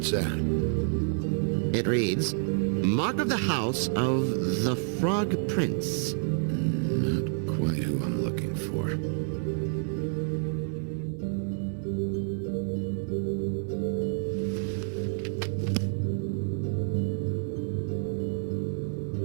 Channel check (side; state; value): left; silent; digital silence